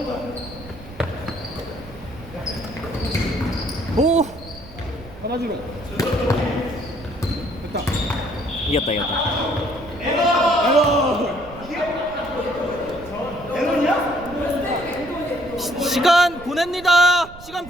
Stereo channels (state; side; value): noise; right; rumble, 18 dB below the sound